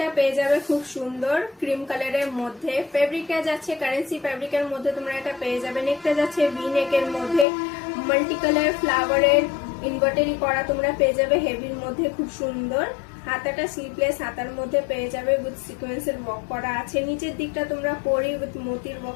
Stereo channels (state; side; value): drops out; right; at 7.5 s